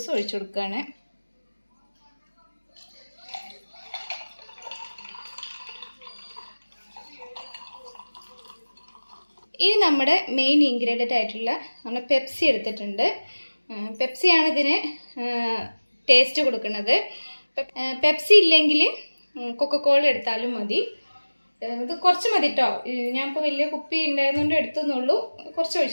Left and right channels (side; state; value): both; inverted; correlation -1.00